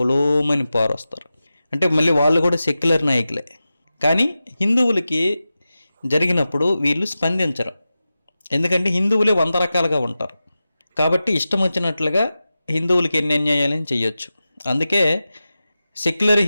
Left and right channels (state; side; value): inverted; both; correlation -0.94